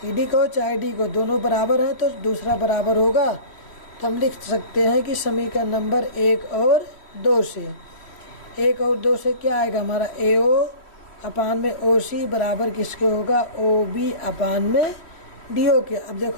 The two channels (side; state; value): right; late; 3.1 ms